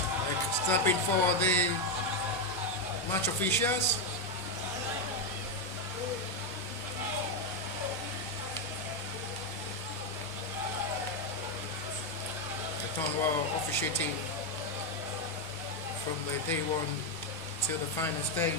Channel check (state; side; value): normal; both; correlation 0.05